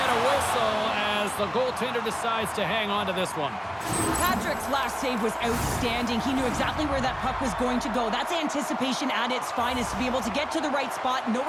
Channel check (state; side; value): identical; both; correlation 1.00